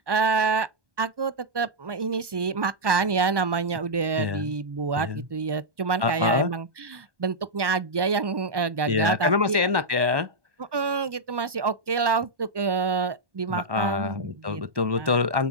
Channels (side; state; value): left; late; 1.2 ms